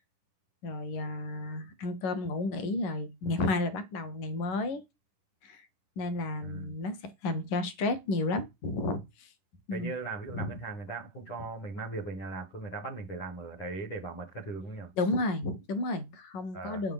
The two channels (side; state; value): right; late; 10 ms